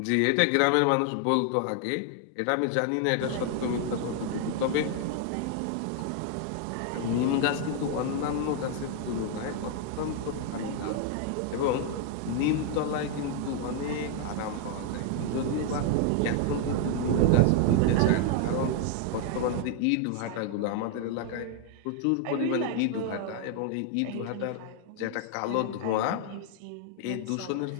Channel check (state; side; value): different; both; correlation 0.00